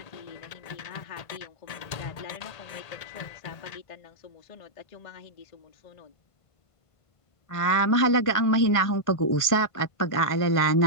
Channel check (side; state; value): right; late; 1.5 ms